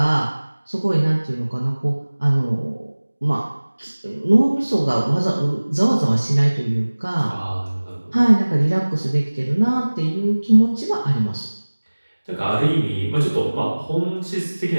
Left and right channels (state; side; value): inverted; both; correlation -1.00